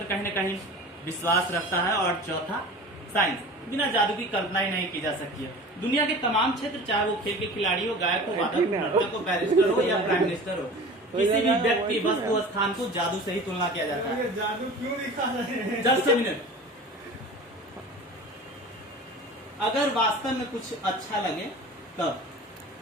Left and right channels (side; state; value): both; normal; correlation 0.38